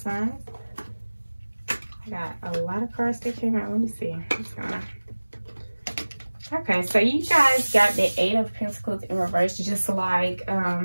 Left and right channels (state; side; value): inverted; both; correlation -1.00